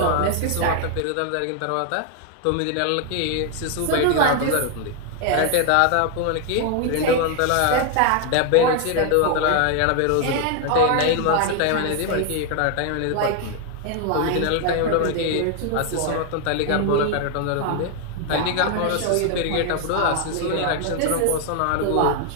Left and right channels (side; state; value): both; different; correlation 0.00